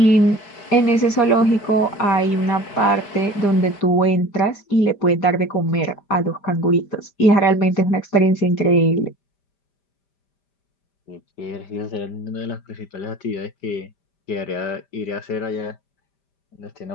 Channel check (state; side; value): late; right; 5.0 ms